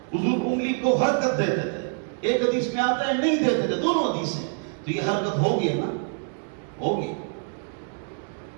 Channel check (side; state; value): left; silent; 61 dB below the other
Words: حضور انگلی کو حرکت دیتے تھے, ایک حدیث میں آتا ہے نہیں دیتے تھے. دونوں حدیث ہیں. تو یہ حرکت ہوگی نا, ہوگی.